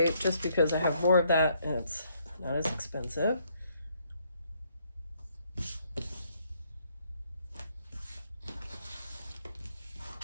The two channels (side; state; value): both; inverted; correlation -0.70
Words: just because I have more of that and it's not as expensive.